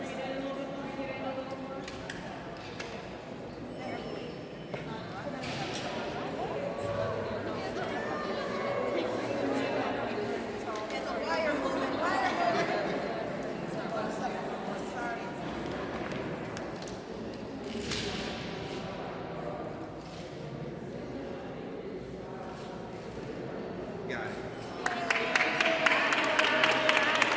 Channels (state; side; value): identical; both; correlation 1.00